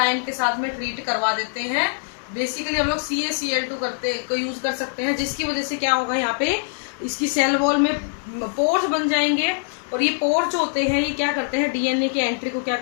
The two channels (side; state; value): right; silent; digital silence